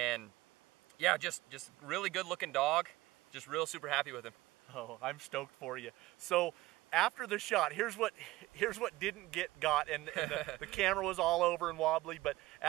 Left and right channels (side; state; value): left; quieter; 18.2 dB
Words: yeah, just really good looking dog. Just real super happy with him. Oh, I'm stoked for you. So after the shot, here's what didn't get got, and the camera was all over and wobbly. But